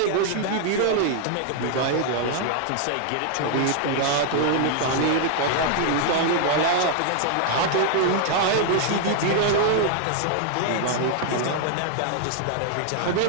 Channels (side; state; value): both; different; correlation 0.00